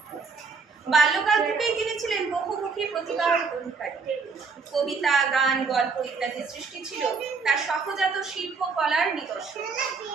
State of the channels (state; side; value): quieter; left; 4.9 dB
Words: বাল্যকাল থেকেই তিনি ছিলেন বহুমুখী প্রতিভার অধিকারী। কবিতা, গান, গল্প ইত্যাদি সৃষ্টি ছিল তার সহজাত শিল্পকলার নিদর্শন।